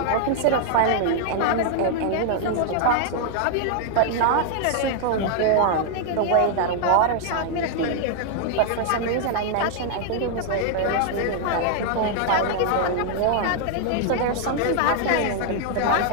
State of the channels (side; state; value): both; different; correlation 0.00